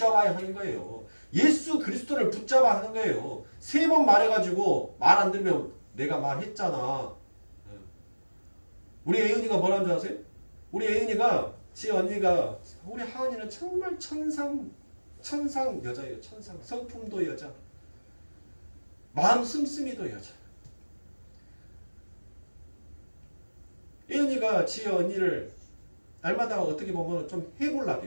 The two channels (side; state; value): both; inverted; correlation -1.00